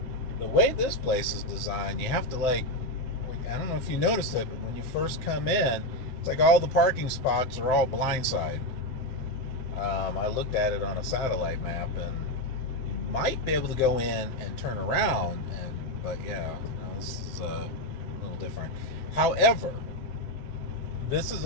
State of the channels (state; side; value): late; right; 7.8 ms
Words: way this place is designed, you have to I don't know if you noticed it, but when you first come in, it's like all the parking spots are all blindside. I looked at it on a satellite map, and you might be able to go in and turn around, but yeah, this is a little different. However, this is